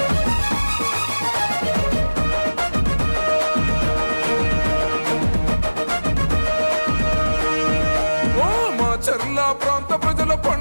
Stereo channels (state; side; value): inverted; both; correlation -1.00